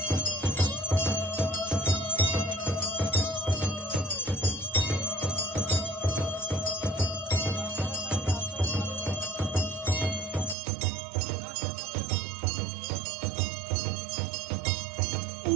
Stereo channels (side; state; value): left; drops out; at 10.6 s